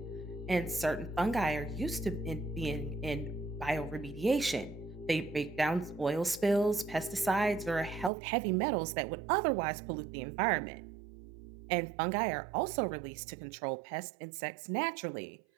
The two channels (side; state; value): left; drops out; at 8.1 s